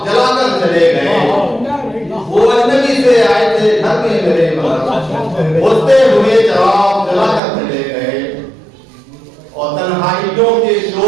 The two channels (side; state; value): left; drops out; at 7.4 s